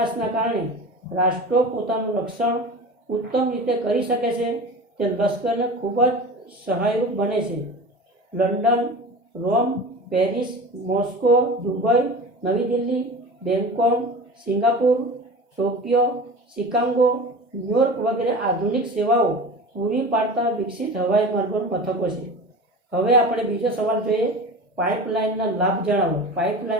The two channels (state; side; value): normal; both; correlation 0.34